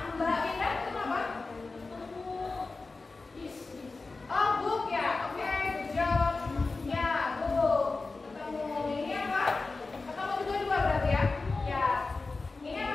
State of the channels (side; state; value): right; quieter; 3.7 dB